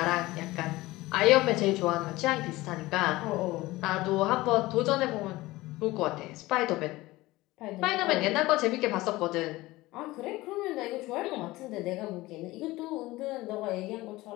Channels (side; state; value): right; quieter; 19.1 dB